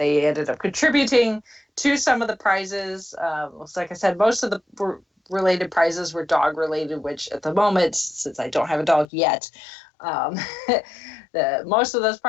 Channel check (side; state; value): right; drops out; at 9.1 s